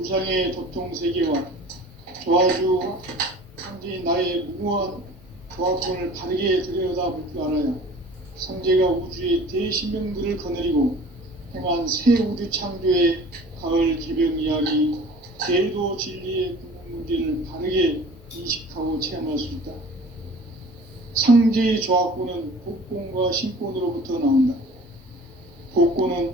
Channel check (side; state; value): both; normal; correlation 0.45